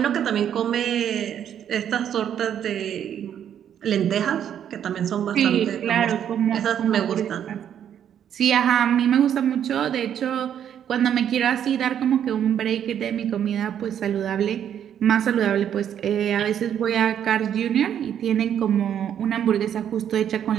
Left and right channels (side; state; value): left; quieter; 9.4 dB